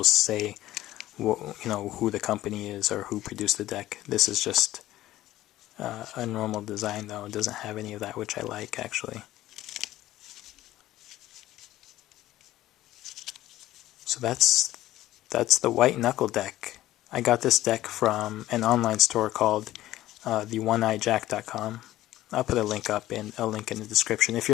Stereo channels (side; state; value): right; quieter; 15.0 dB